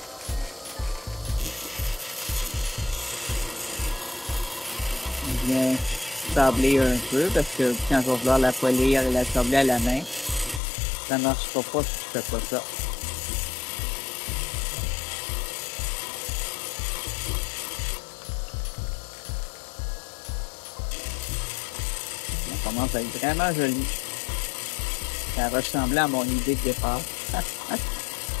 Bien sabler un peu parce que quand je vais vouloir la polir et la sabler à la main, ça ne marchera pas si je fais pas ça. Ça commence à être vraiment joli. Ça ressemblait à mon idée de départ.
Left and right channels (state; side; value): drops out; right; at 10.6 s